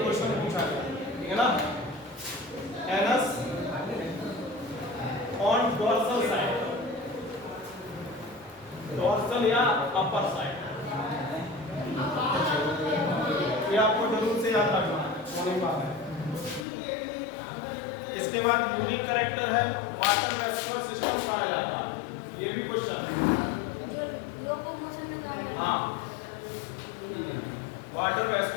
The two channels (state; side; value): drops out; right; at 16.7 s